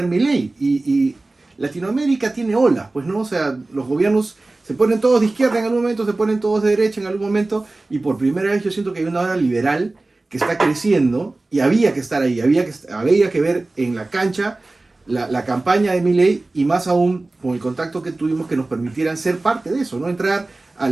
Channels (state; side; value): quieter; left; 3.1 dB